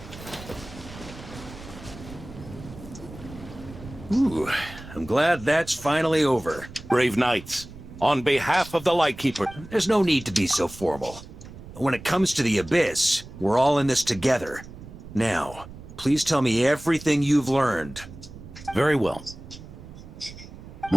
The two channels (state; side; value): noise; right; rumble, 16 dB below the sound